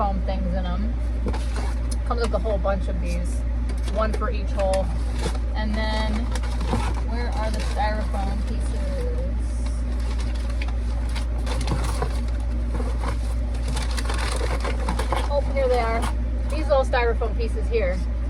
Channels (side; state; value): both; identical; correlation 1.00